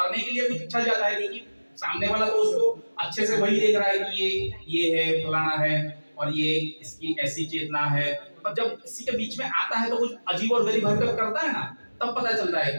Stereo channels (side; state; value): both; inverted; correlation -1.00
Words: के लिए कुछ इच्छा जाता है क्योंकि सामने वाला तो उसको अच्छे से वही देख रहा है कि ये है फलाना है और ये इसकी ऐसी चेतना है। पर जब किसी के बीच में आता है तो कुछ अजीब और गरीब हरकत करता है ना, तब पता चलता है